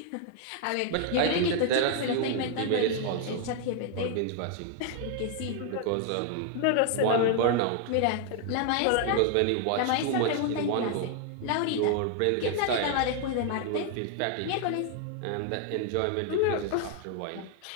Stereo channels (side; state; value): both; different; correlation 0.00